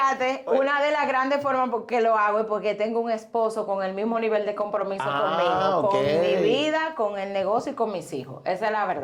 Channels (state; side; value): identical; both; correlation 1.00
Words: Oye. una de las grandes formas por que lo hago es porque tengo un esposo con el mismo nivel de compromiso conmigo, con mi vida, con el negocio y con mis hijos. Esa es la